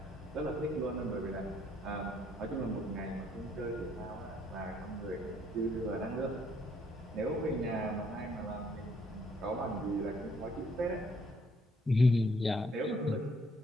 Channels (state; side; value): normal; both; correlation 0.66